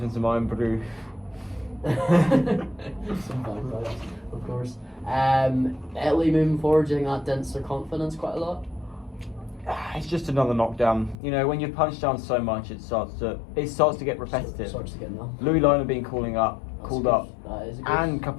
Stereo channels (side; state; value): right; drops out; at 11.2 s